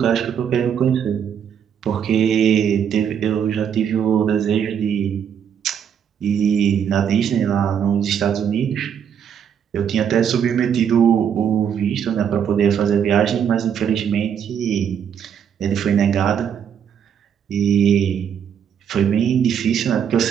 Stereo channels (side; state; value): left; quieter; 8.2 dB